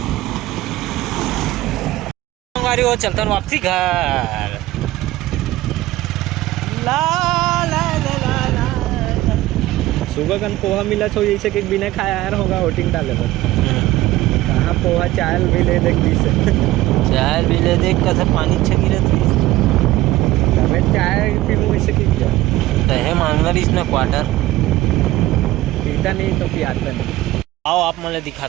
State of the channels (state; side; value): quieter; left; 16.7 dB